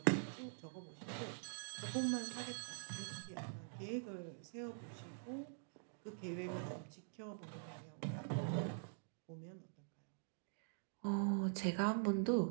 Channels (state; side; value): silent; left; digital silence